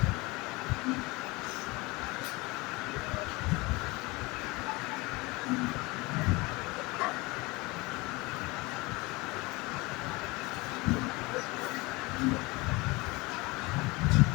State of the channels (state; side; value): quieter; right; 24.1 dB